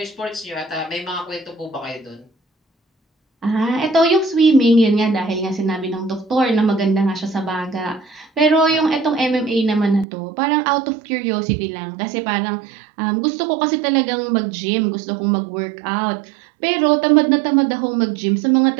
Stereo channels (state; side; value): drops out; left; at 10.1 s